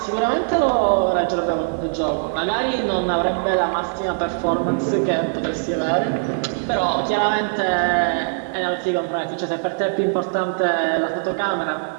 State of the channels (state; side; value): silent; left; digital silence